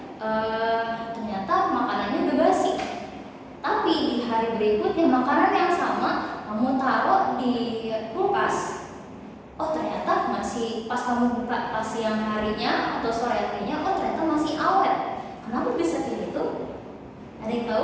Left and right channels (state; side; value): identical; both; correlation 1.00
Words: ternyata makanannya udah basi. Tapi di hari berikutnya makanan yang sama kamu taruh di kulkas. Oh, ternyata masih pas kamu buka pas siang harinya atau sore harinya, oh ternyata masih awet. Kenapa bisa kayak gitu? Ada yang